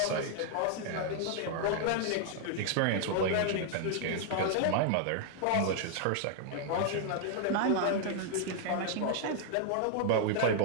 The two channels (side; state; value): both; different; correlation 0.00